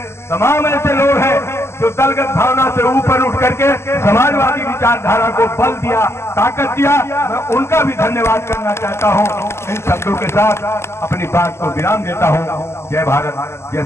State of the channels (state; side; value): late; right; 0.13 ms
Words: तमाम ऐसे लोग हैं जो दलगत भावना से ऊपर उठ करके समाजवादी विचारधारा को बल दिया, ताकत दिया। मैं उनका भी धन्यवाद करना चाहता हूं। इन शब्दों के साथ अपनी बात को विराम देता हूं। जय भारत, जय